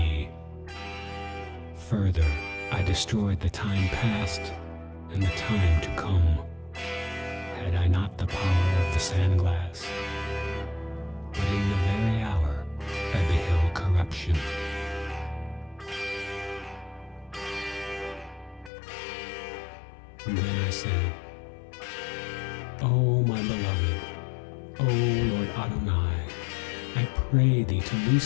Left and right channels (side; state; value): right; drops out; at 18.7 s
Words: Further, I destroyed the time past and the time to come, had I not the power of the sandglass. But in the very hour I beheld corruption. Then I said, O my beloved, O Lord Adonai, I pray thee to